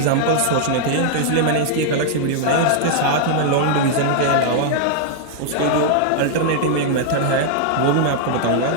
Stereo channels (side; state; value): both; different; correlation -0.01